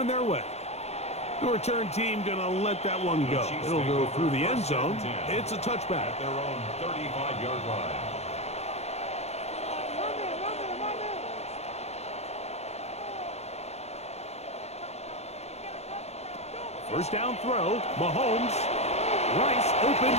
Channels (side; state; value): right; late; 0.31 ms